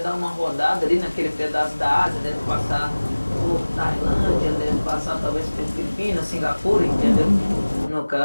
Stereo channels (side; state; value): both; inverted; correlation -1.00